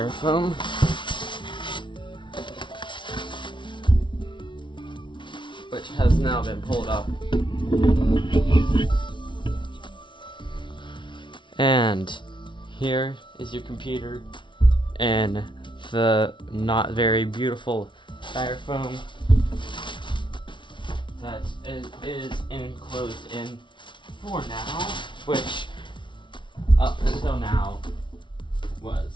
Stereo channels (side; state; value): right; late; 0.24 ms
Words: Which has now been pulled up. And here is your computer and the not very beautiful styrofoam that is enclosed in for now, which up until now was